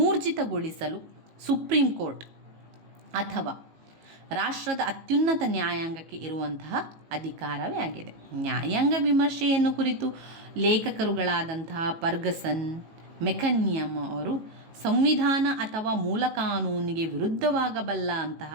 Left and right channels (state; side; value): late; left; 18 ms